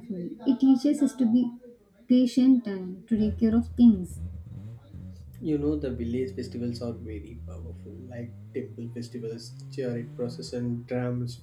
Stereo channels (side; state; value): both; identical; correlation 1.00